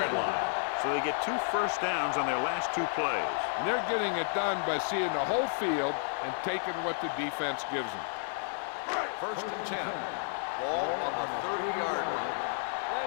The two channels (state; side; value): silent; right; digital silence